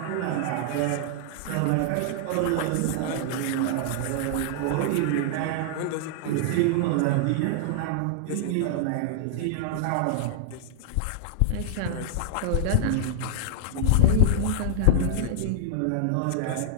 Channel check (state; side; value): different; both; correlation -0.01